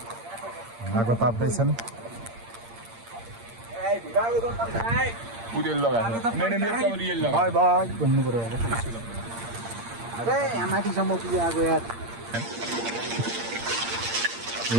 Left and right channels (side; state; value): left; late; 8.7 ms